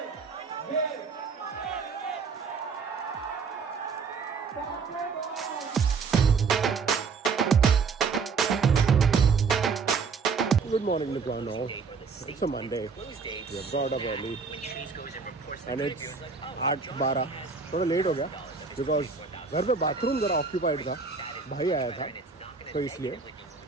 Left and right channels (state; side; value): quieter; left; 5.2 dB